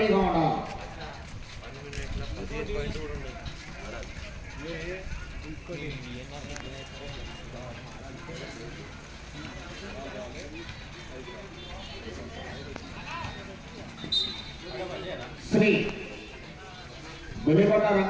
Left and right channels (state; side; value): identical; both; correlation 1.00